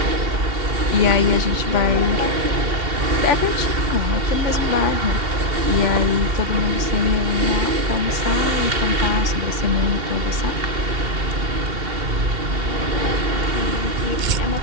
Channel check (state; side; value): late; left; 2.7 ms